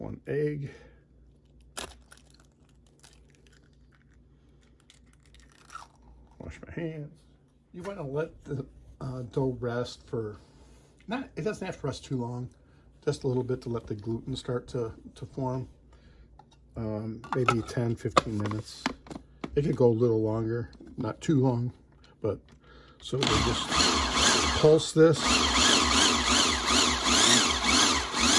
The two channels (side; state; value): both; identical; correlation 1.00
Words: egg, wash my hands. You want to let the dough rest for, it doesn't have to rest too long. Just a little bit to let the gluten start to form. Maybe 10-15 minutes. It could go a little longer, not too long, but so we just pulse this.